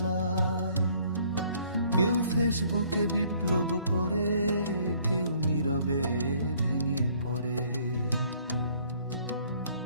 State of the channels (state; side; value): inverted; both; correlation -0.61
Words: কেউ ফেসবুকে বিপ্লব করে, কেউ নীরবে ভেঙে পড়ে।